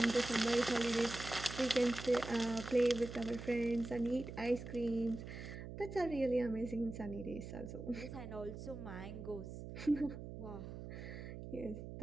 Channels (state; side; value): noise; right; hum, 9 dB below the sound